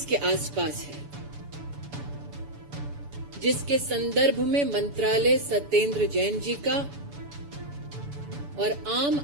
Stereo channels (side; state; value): left; late; 7.0 ms